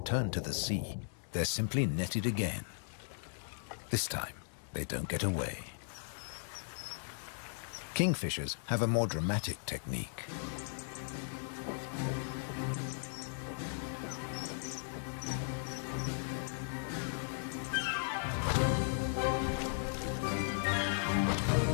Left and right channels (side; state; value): right; silent; 53 dB below the other